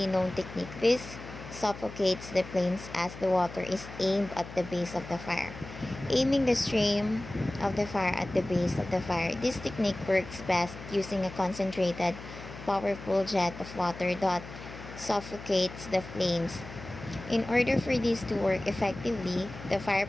known technique, this suffocates the flames as the water is aimed at the base of the fire. Aiming the stream of the fire at the base of the fire. This technique works best using a concentrated, powerful jet of water that suffocates the flames. In order for this to work effectively, the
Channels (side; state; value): left; noise; hum, 13 dB below the sound